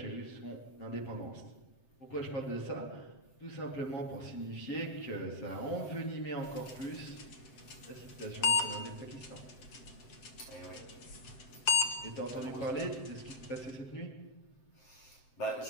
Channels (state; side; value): late; right; 7.6 ms